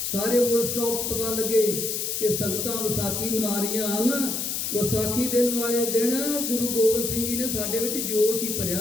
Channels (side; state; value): left; noise; hiss, 2 dB below the sound